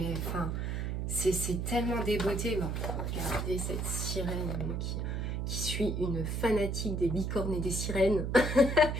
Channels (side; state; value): right; noise; hum, 1 dB below the sound